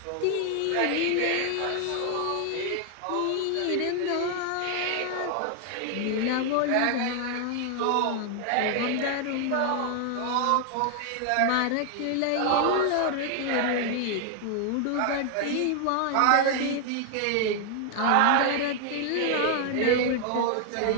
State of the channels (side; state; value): both; different; correlation 0.00